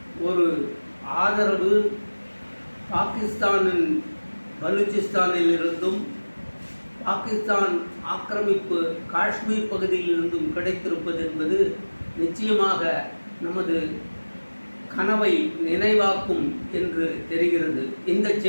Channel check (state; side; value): inverted; both; correlation -1.00